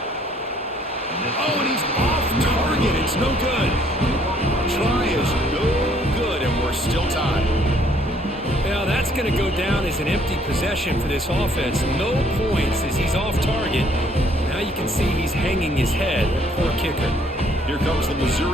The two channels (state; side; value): normal; both; correlation 0.64